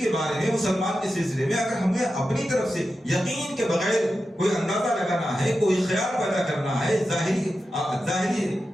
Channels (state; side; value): normal; both; correlation 0.91